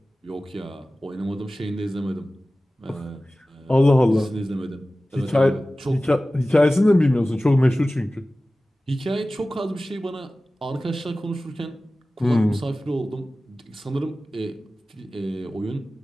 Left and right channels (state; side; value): normal; both; correlation 0.96